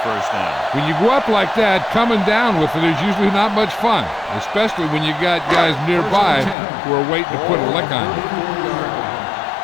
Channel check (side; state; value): right; drops out; at 6.6 s